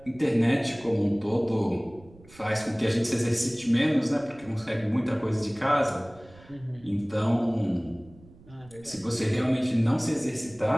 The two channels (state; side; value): noise; right; rumble, 24 dB below the sound